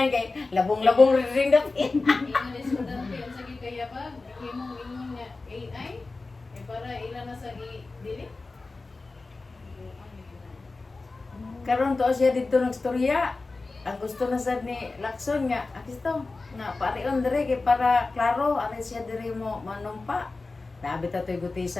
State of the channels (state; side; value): quieter; right; 3.6 dB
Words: kay labong-labong ring dap. Ingon estudyante, ang sakit kaya ba? imong ingon niya AI para ilan na sa i-delete. Karon to siya dito nagstorya. Ang gusto na sad ni Lacson nga, akisto na parion dire kay para klaro ari siya dire mo manumpa. Nabi ta toy